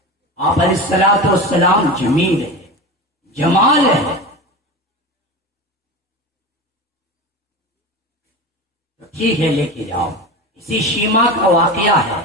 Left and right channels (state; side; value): normal; both; correlation 0.27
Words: آپ علیہ الصلوۃ والسلام جمیل ہے، جمال ہے۔ ٹھیک ہے لے کے جاؤ۔ اسی شیمہ کا واقعہ ہے